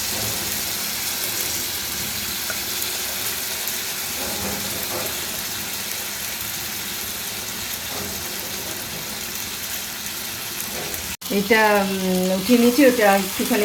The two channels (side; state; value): both; identical; correlation 1.00